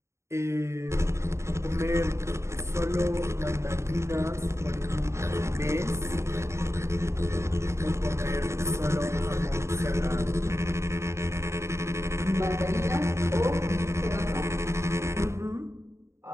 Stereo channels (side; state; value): left; late; 0.14 ms